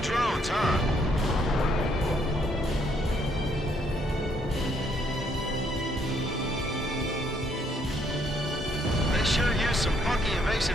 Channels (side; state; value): both; normal; correlation 0.69